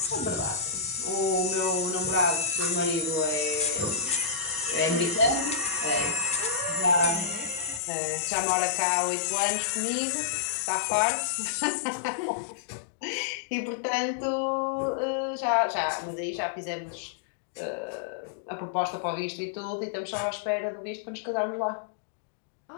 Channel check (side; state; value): right; drops out; at 7.8 s